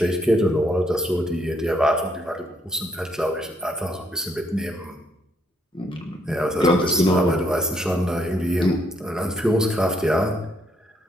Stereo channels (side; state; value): both; normal; correlation 0.72